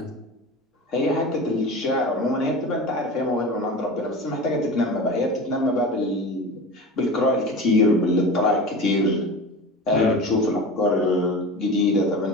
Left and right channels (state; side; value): normal; both; correlation 0.31